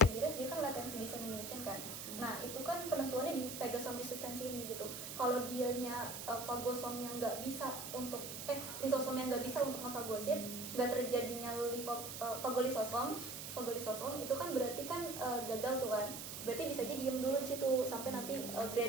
gires dia kan latency dissemination kan. Nah, itu kan penentuannya di phagosome resistance ini gitu. Kalau dianya fagosomnya nggak bisa untuk lisosomnya nggak bisa untuk ngefagosit, nggak terjadinya fagolisosom itu kan berarti kan gagal tuh kan. Berarti bisa aja diem dulu di situ sampai nanti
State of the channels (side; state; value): right; noise; hiss, 7 dB below the sound